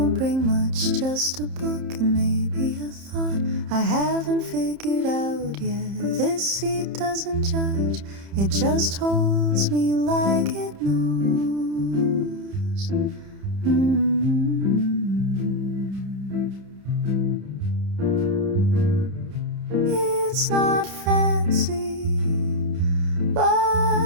bring much, just a book and maybe a thought I haven't figured out yet. This seat doesn't judge, it just holds me like it knows. It's not fancy,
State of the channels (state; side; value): late; left; 30 ms